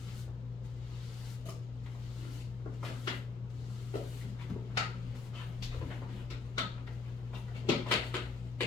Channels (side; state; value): right; quieter; 4.4 dB